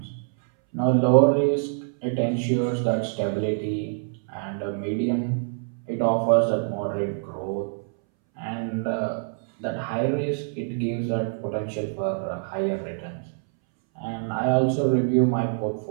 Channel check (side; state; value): left; silent; 61 dB below the other